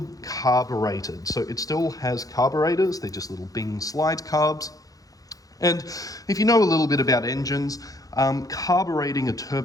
carbureted. So it still has carburetors, they're just little Bing slide carbs. And if you know a little bit about engines, carbureting a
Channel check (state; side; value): late; right; 0.17 ms